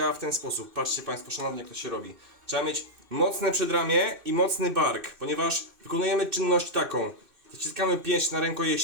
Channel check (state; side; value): late; left; 2.6 ms